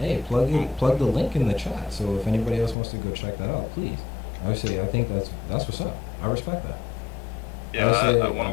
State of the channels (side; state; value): right; drops out; at 2.8 s